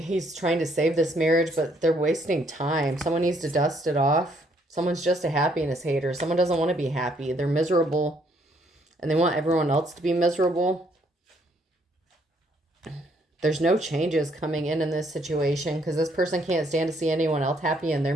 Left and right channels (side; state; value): both; normal; correlation 0.68